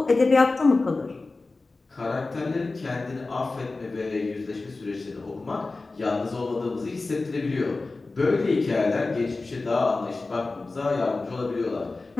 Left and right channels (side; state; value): right; quieter; 3.5 dB